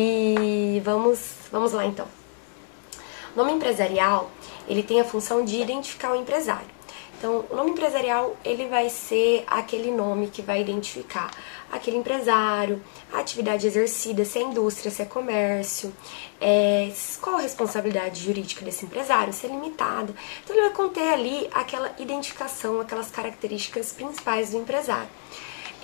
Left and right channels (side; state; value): right; silent; digital silence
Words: vamos lá então. O nome empresarial, ele tem a função de identificar o empresário. Então, o nome empresarial, ele vai ser aquele nome que vai identificar aquele empresário, a atividade exercida, se é indústria, se é comércio, qual a responsabilidade jurídica desse empresário, se é limitada. Então, ele vai conter ali aquela identificação, aquelas características principais do empresário.